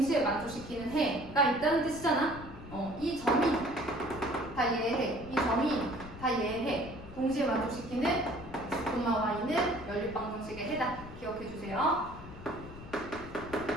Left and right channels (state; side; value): noise; left; rumble, 14 dB below the sound